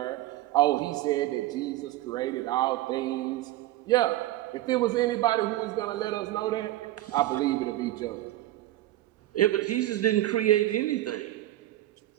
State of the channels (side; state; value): left; quieter; 15.3 dB